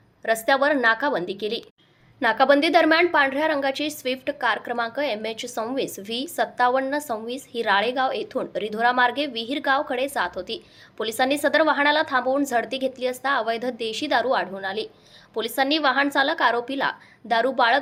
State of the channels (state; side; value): identical; both; correlation 1.00